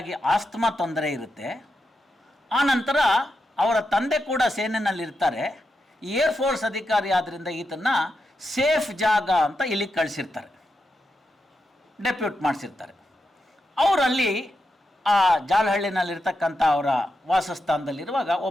ಆಸ್ತಮಾ ತೊಂದರೆ ಇರುತ್ತೆ. ಆನಂತರ ಅವರ ತಂದೆ ಕೂಡ ಸೇನೆಯಲ್ಲಿರ್ತಾರೆ. ಏರ್ಫೋರ್ಸ್ ಅಧಿಕಾರಿ ಆದ್ದರಿಂದ ಈತನ್ನ ಸೇಫ್ ಜಾಗ ಅಂತ ಇಲ್ಲಿಗೆ ಕಳಿಸಿರ್ತಾರೆ, ಡೆಪ್ಯೂಟ್ ಮಾಡಿಸಿರ್ತಾರೆ. ಅವರಲ್ಲಿ ಆ ಜಾಲಹಳ್ಳಿನಲ್ಲಿರ್ತಕ್ಕಂಥ ಅವರ ವಾಸಸ್ಥಾನದಲ್ಲಿರುವಾಗ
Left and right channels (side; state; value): both; normal; correlation 0.86